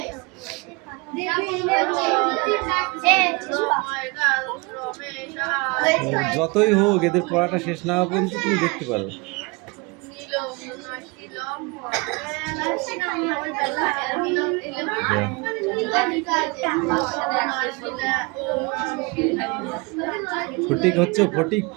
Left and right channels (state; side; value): quieter; left; 28.2 dB